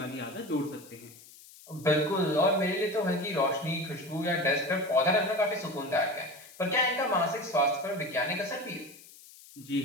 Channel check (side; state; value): left; noise; hiss, 21 dB below the sound